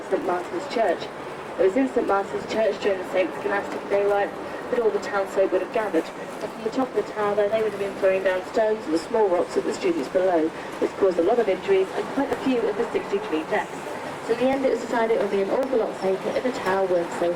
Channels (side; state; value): both; identical; correlation 1.00